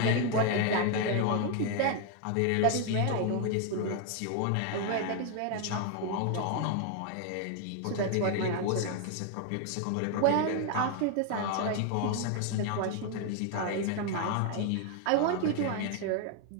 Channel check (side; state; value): both; different; correlation 0.01